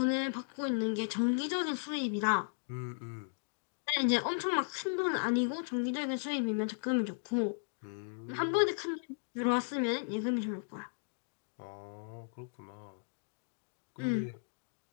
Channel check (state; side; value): silent; right; digital silence